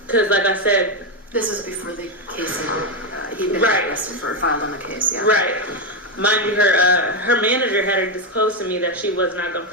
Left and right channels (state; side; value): normal; both; correlation 0.07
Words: Because, like I said... This was before the case he'd been right. arrested for, filed on the case, yeah. Right. Mind you, her manager had her disclosed to me that she was not going to